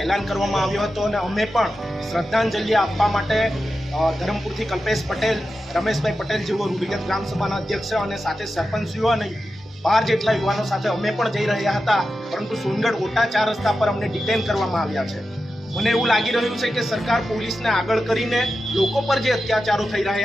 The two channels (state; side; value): normal; both; correlation 0.91